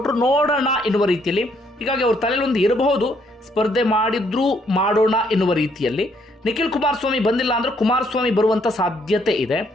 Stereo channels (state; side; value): normal; both; correlation 0.69